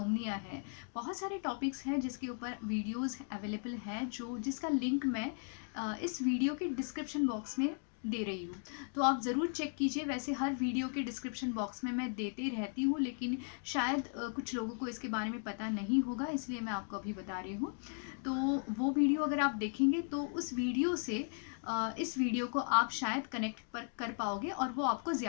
है, बहुत सारे टॉपिक्स हैं जिसके ऊपर वीडियोज़ अवेलेबल हैं, जिसका लिंक मैं इस वीडियो के डिस्क्रिप्शन बॉक्स में दे रही हूँ। तो आप ज़रूर चेक कीजिए। वैसे हर वीडियो के डिस्क्रिप्शन बॉक्स में मैं देते रहती हूँ, लेकिन शायद कुछ लोगों को इसके बारे में पता नहीं होगा, इसलिए मैं आपको अभी बता रही हूँ। तो वो वीडियो अगर आप देखेंगे तो उस वीडियो से इस वीडियो को आप शायद कनेक्ट कर पाओगे और वो आपको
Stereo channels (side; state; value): right; silent; 53 dB below the other